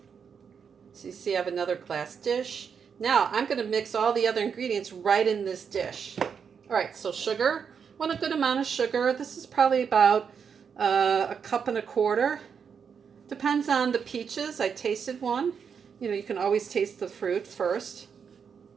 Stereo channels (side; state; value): left; quieter; 6.7 dB